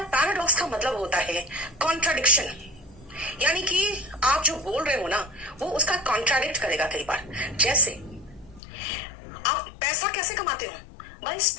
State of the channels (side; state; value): right; drops out; at 8.6 s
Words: का मतलब होता है कॉन्ट्राडिक्शन, यानी कि आप जो बोल रहे हो ना वो उसका कॉन्ट्राडिक्ट करेगा कई बार। जैसे आप पैसा कैसे कमाते हो? By